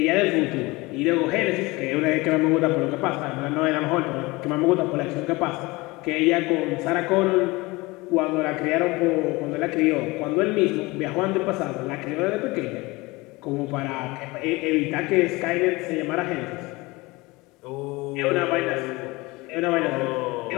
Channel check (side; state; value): right; quieter; 22.9 dB